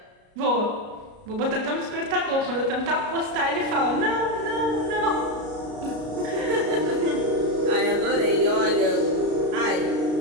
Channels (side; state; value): left; late; 33 ms